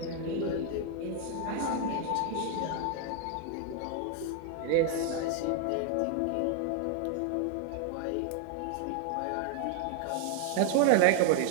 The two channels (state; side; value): different; both; correlation 0.01